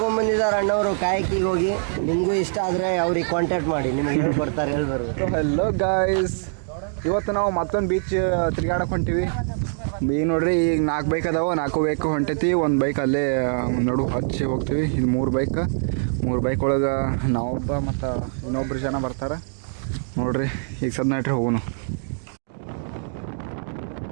ಅಣ್ಣವರು ಕಾಯಕಿಗೆ ಹೋಗಿ. ನಿಮಗೂ ಇಷ್ಟ ಆದರೆ ಅವ್ರಿಗೆ ಕಾಂಟ್ಯಾಕ್ಟ್ ಮಾಡಿ, ನಿಮಗೆ ಹೇಳ್ಕೊಡ್ತಾರೆ ಹೇಳ್ಬಾರ್ದು. ಹಲೋ ಗಾಯ್ಸ್, ಇವತ್ತು ನಾವು ಮತ್ತೊಂದು ಬೀಚ್ ತಿರುಗಾಡಕ್ಕೆ ಹೊಂಟೀವಿ. ಈಗ ನೋಡ್ರಿ, ಈಗ 4 ಬೈಕ್ ಅದಾವೆ, 4 ಬೈಕ್ ಹೊಂಟೈತಿ. ಒಂದು ಬೈಕ್ ಅಲ್ಲೇ ನಡು ಹಚ್ಚಿ ಹೋಗ್ತೀವಿ. ಇದು 3 ಬೈಕ್ ಒಳಗೆ ನಾವೊಬ್ಬ ಮತ್ತು ಇನ್ನೊಬ್ರು ಜನ ಬರ್ತಾರೆ ನೋಡ್ರಿ. ಈಗ ಸದ್ ನಟ್ರಿ ಹೋಗೋಣ.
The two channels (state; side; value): silent; left; 63 dB below the other